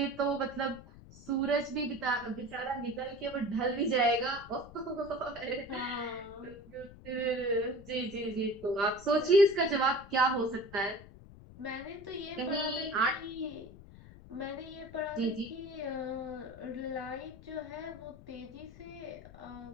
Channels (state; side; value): noise; left; rumble, 18 dB below the sound